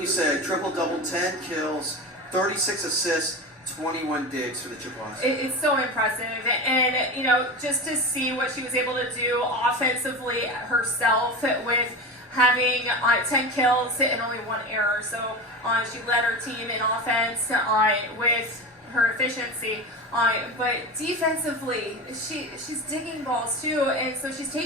say? Triple-double, 10 kills, 36 assists, 21 digs for the Chippewas. It's so impressive, and just to see what she was able to do offensively herself with having 10 kills and only 1 error. So she led her team in offense with her efficiency. But defensively, she's digging balls too, and so she's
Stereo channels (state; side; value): normal; both; correlation 0.26